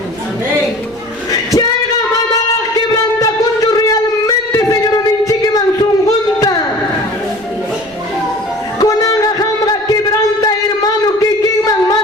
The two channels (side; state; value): right; noise; rumble, 27 dB below the sound